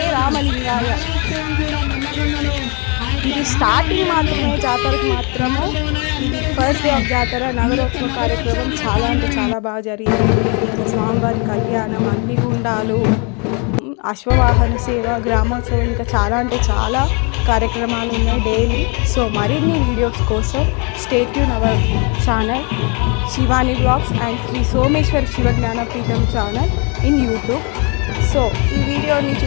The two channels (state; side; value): quieter; right; 33.9 dB